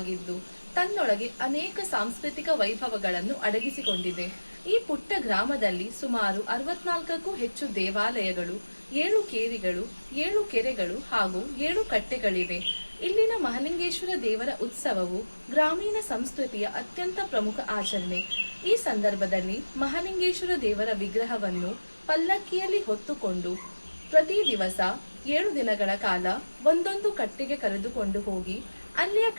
ತನ್ನೊಳಗೆ ಅನೇಕ ಸಾಂಸ್ಕೃತಿಕ ವೈಭವಗಳನ್ನು ಅಡಗಿಸಿಕೊಂಡಿದೆ. ಈ ಪುಟ್ಟ ಗ್ರಾಮದಲ್ಲಿ ಸುಮಾರು 64ಕ್ಕೂ ಹೆಚ್ಚು ದೇವಾಲಯಗಳು, 7 ಕೇರಿಗಳು, 7 ಕೆರೆಗಳು ಹಾಗೂ 7 ಕಟ್ಟೆಗಳಿವೆ. ಇಲ್ಲಿನ ಮಹಾಲಿಂಗೇಶ್ವರ ದೇವರ ಉತ್ಸವವು ಗ್ರಾಮೀಣ ಸಂಸ್ಕೃತಿಯ ಅತ್ಯಂತ ಪ್ರಮುಖ ಆಚರಣೆ. ಈ ಸಂದರ್ಭದಲ್ಲಿ ಮಹಾಲಿಂಗೇಶ್ವರ ದೇವರ ವಿಗ್ರಹವನ್ನು ಪಲ್ಲಕ್ಕಿಯಲ್ಲಿ ಹೊತ್ತುಕೊಂಡು ಪ್ರತಿ ದಿವಸ 7 ದಿನಗಳ ಕಾಲ ಒಂದೊಂದು ಕಟ್ಟೆಗೆ ಕರೆದುಕೊಂಡು ಹೋಗಿ ಅಲ್ಲಿಯ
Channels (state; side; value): inverted; both; correlation -1.00